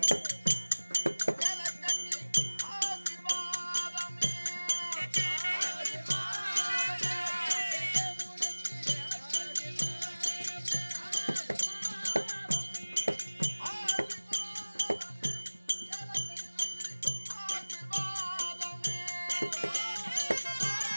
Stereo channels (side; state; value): both; inverted; correlation -1.00